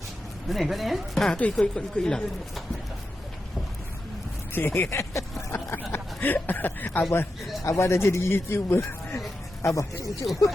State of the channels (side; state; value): both; normal; correlation 0.89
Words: Mana kau ni Tu ikut hilang. Abah dah jadi YouTuber. Abah, cucuk.